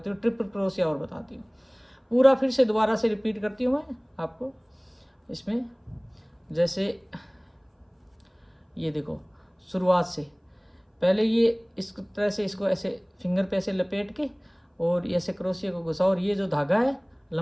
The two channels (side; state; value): both; identical; correlation 1.00